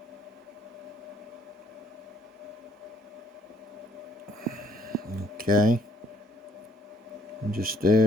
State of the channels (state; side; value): normal; both; correlation 0.64